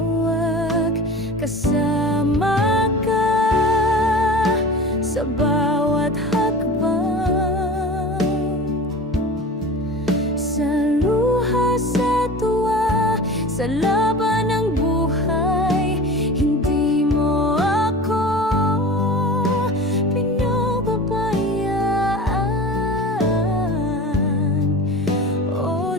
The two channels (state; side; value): normal; both; correlation 0.35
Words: Kasama Kasama ka sa bawat hakbang, sa luha, sa tuwa, sa laban ng buhay. Hindi mo ako pinababayaan. O